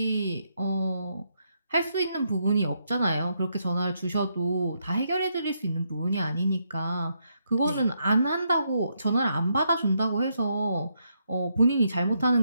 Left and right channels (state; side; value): inverted; both; correlation -0.78